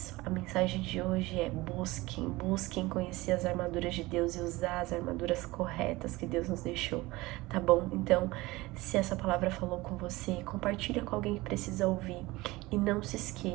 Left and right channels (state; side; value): quieter; left; 20.5 dB